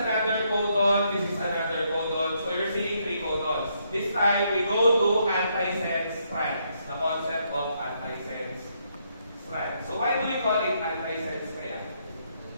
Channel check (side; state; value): both; inverted; correlation -0.75